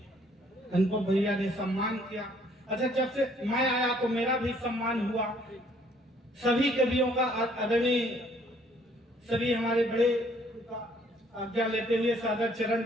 उनको भैया ने सम्मान किया। अच्छा, जब से मैं आया तो मेरा भी सम्मान हुआ। सभी कवियों का आदरणीय सभी हमारे बड़े का आज्ञा लेते हुए सादर चरण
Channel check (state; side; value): normal; both; correlation 0.62